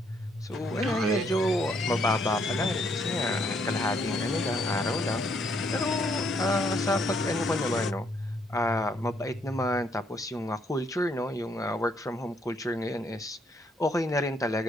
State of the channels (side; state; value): both; normal; correlation 0.70